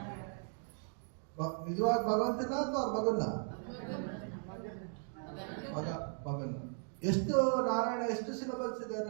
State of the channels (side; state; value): left; silent; 53 dB below the other